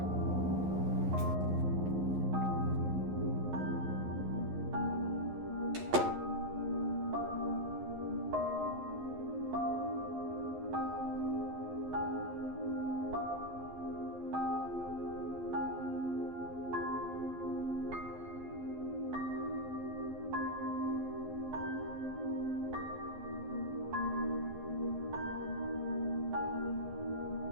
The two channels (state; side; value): late; left; 11 ms